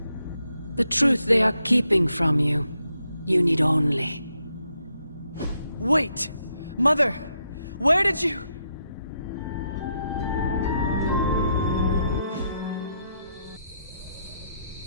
The truth they are keeping from you. You need only... Wait! Mother! Where did you...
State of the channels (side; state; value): both; inverted; correlation -0.80